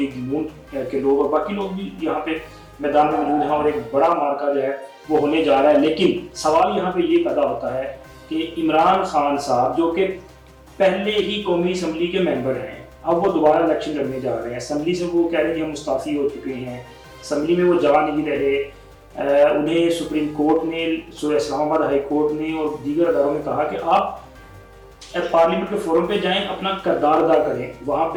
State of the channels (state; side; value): identical; both; correlation 1.00